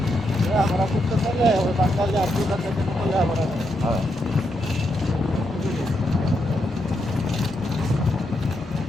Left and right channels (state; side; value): normal; both; correlation 0.81